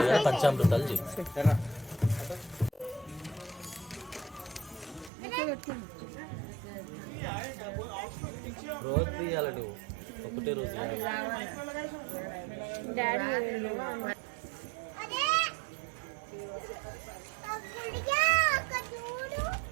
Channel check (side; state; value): left; drops out; at 5.1 s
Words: పంచామృతాలు చేయి. రోజు తీయాలి నువ్వు, ఒకటే రోజు